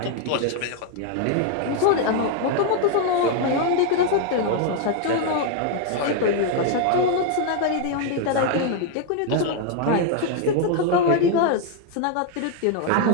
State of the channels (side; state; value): both; different; correlation 0.00